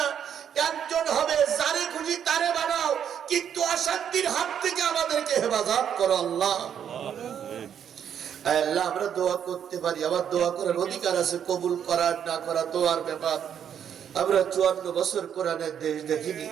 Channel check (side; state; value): left; quieter; 8.8 dB